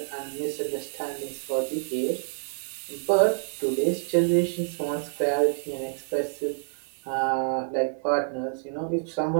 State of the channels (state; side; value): silent; left; digital silence